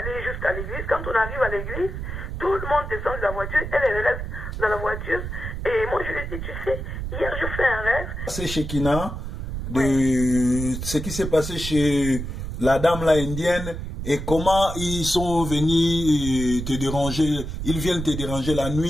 jusqu'à l'église. Quand on arrive à l'église, tout le monde descend de la voiture. Elle reste dans la voiture. Et moi, je lui dis, tu sais, hier, je fais un rêve. C'est chez Kina, ce qui s'est passé chez la dame là indienne et comment ils sont venus te déranger, ils viennent te déranger la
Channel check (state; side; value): noise; right; rumble, 6 dB below the sound